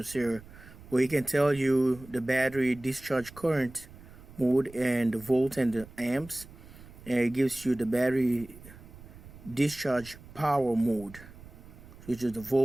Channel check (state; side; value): noise; right; rumble, 19 dB below the sound